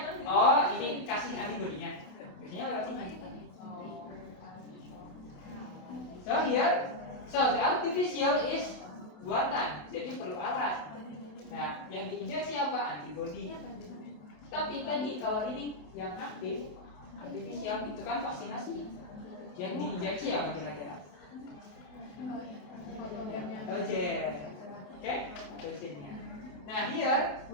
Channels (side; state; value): right; late; 28 ms